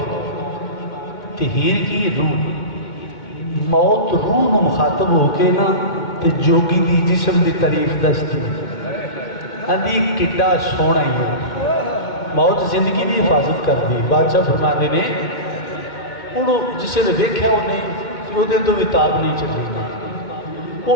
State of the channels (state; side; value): late; right; 2.2 ms